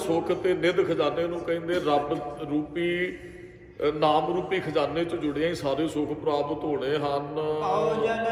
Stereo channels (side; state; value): both; identical; correlation 1.00